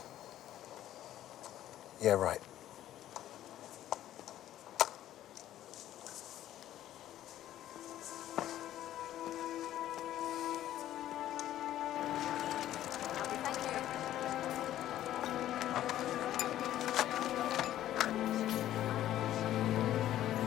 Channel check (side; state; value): right; quieter; 12.7 dB